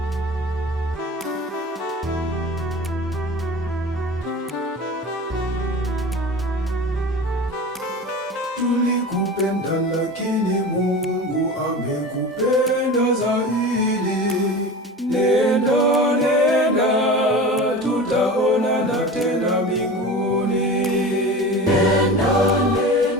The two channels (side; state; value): both; normal; correlation 0.33